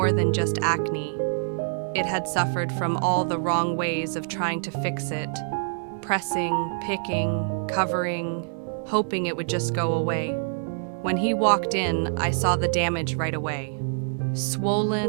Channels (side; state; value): left; silent; 61 dB below the other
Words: than just acne. It had suffered from all the wrong ways of trying to fix it, pressing, picking, covering, hoping it would just go away. When he walked in, I saw the damage right away.